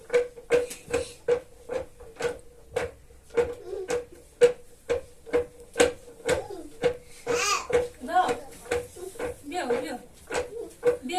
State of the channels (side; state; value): both; identical; correlation 1.00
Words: دا بیا بیا